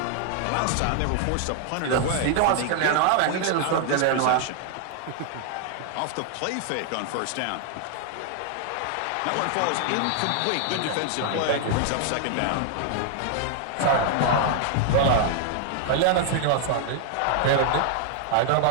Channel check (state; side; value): different; both; correlation 0.00